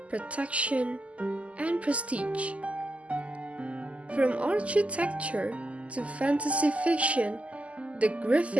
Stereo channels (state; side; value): late; left; 0.064 ms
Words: protection, and prestige. From architecture to fantasy fiction, the